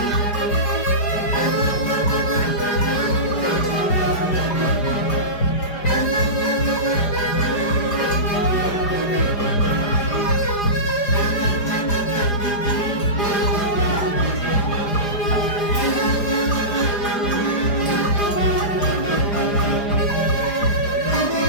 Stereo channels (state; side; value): late; right; 4.9 ms